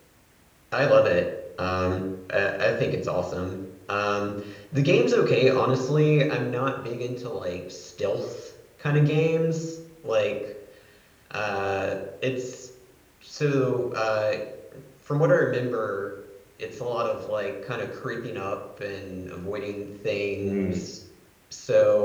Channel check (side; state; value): both; identical; correlation 1.00